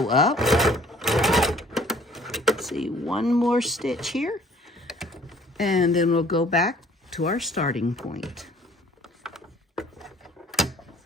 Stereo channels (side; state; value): both; normal; correlation 0.56